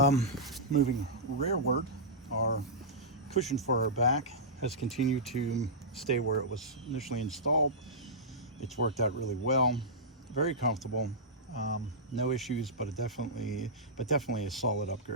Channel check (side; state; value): both; normal; correlation -0.14